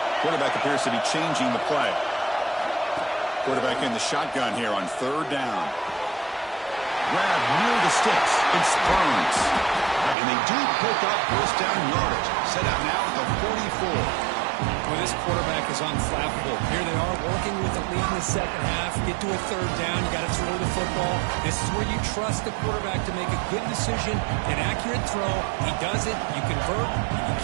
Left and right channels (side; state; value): left; drops out; at 10.2 s